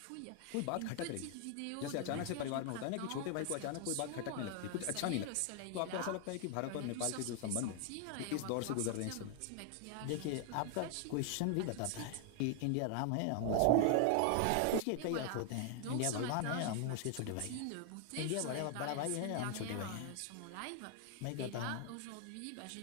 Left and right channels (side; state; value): both; different; correlation 0.00